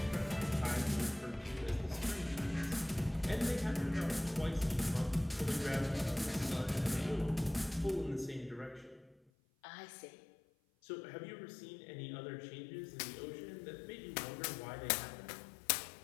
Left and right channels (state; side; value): drops out; right; at 9.2 s